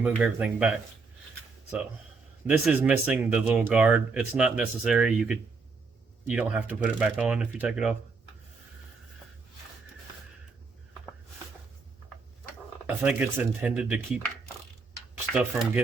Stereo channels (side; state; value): left; quieter; 4.4 dB